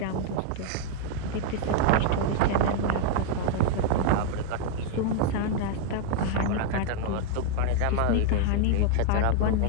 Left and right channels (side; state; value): both; different; correlation 0.00